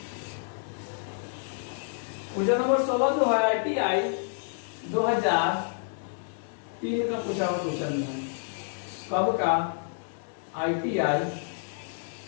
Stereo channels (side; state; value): right; silent; digital silence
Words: Question number 16 जो है ITI 2003 का पूछा हुआ क्वेश्चन है। कब का, ITI